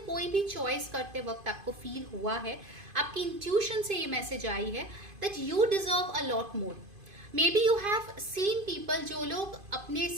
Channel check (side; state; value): left; late; 2.5 ms